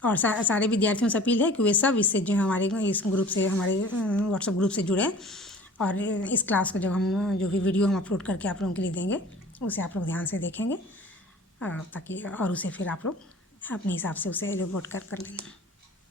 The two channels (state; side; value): normal; both; correlation 0.46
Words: और सारे विद्यार्थियों से अपील है कि वे सब इससे जो हमारे इस ग्रुप से, हमारे व्हाट्सएप ग्रुप से जुड़े, और इस क्लास को जब हम जो भी वीडियो हम अपलोड करके आप लोगों के लिए देंगे उसे आप लोग ध्यान से देखेंगे, ताकि और उसे फिर आप लोग अपने हिसाब से उसे रिपोर्ट कर लेंगे।